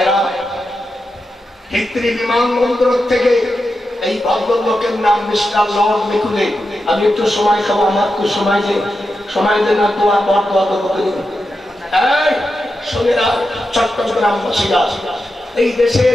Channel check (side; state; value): both; normal; correlation 0.89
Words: হিত্রি বিমানবন্দর থেকে এই ভদ্রলোকের নাম মিস্টার লর্ড মেকুলে। আমি একটু সময় খাবো, আমার একটু সময় দেন না, তোমার বড় শোনেরা চট্টগ্রামবাসীরা, এই দেশের